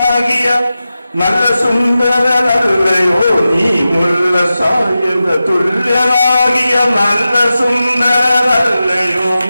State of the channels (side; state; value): both; inverted; correlation -0.93